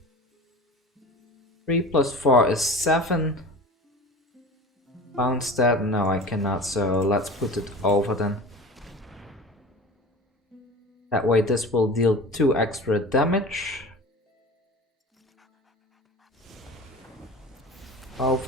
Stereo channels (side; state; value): both; normal; correlation 0.36